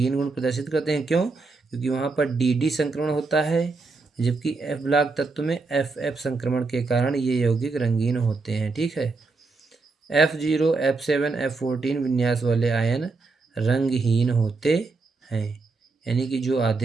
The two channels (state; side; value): quieter; left; 3.9 dB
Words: प्रदर्शित करते हैं, क्यों, क्योंकि वहाँ पर DD संक्रमण होता है, जबकि F ब्लॉक तत्व में FF संक्रमण के कारण ये यौगिक रंगीन होते हैं। ठीक है, F0, F7, F14 विन्यास वाले आयन रंगहीन होते हैं, यानी कि जो